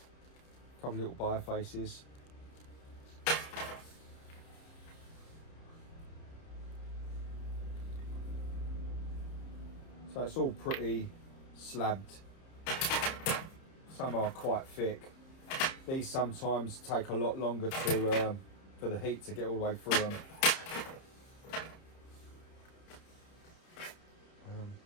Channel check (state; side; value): late; right; 30 ms